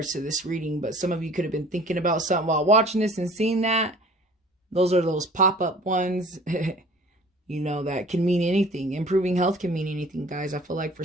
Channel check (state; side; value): normal; both; correlation 0.48